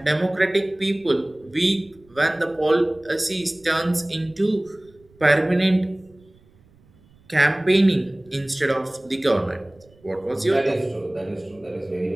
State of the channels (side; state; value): right; noise; rumble, 29 dB below the sound